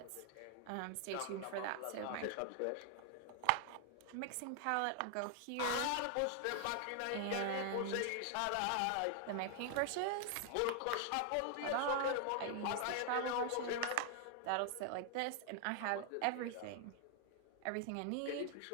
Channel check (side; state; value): both; different; correlation 0.00